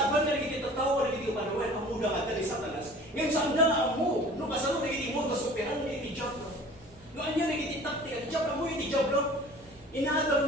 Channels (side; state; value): both; normal; correlation 0.45